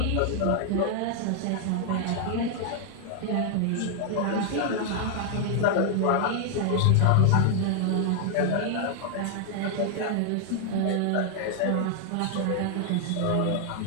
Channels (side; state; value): both; different; correlation 0.00